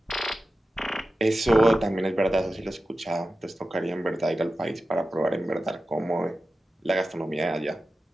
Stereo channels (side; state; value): both; normal; correlation 0.93